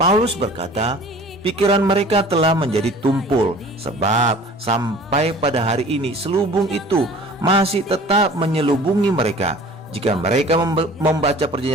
berkata, pikiran mereka telah menjadi tumpul, sebab sampai pada hari ini selubung itu masih tetap menyelubungi mereka. Jika mereka membaca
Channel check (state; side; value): normal; both; correlation 0.46